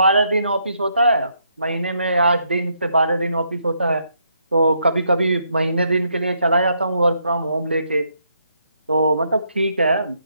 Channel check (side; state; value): both; inverted; correlation -0.75